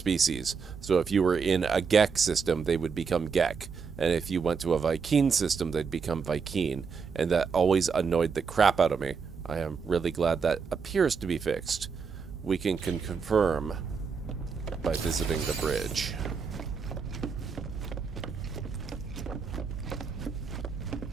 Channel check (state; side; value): quieter; left; 5.6 dB